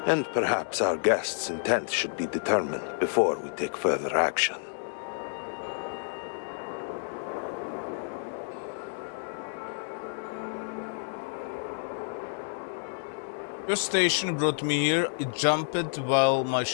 And perhaps our guest's intent should be determined before we take further action. Your station brought me here. It jumped while my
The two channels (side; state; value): right; silent; digital silence